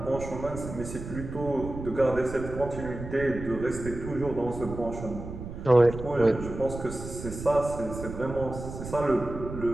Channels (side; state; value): right; noise; rumble, 9 dB below the sound